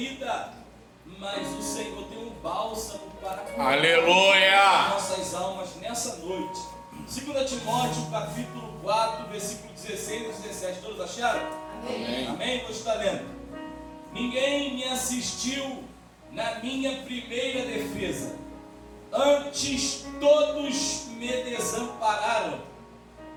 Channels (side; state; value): both; identical; correlation 1.00